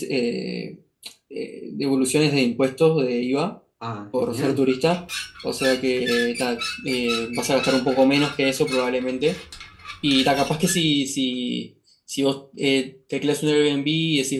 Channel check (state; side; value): identical; both; correlation 1.00